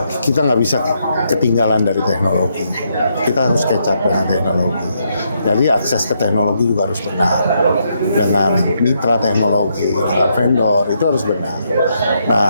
kita nggak bisa ketinggalan dari teknologi. Kita harus catch up dengan teknologi. Jadi akses ke teknologi juga harus benar. Dengan mitra teknologi, dengan vendor, itu harus benar.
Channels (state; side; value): inverted; both; correlation -0.77